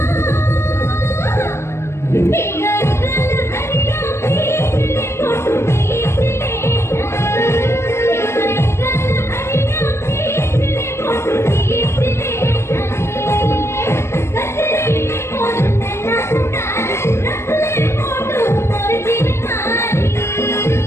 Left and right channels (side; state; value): right; late; 0.13 ms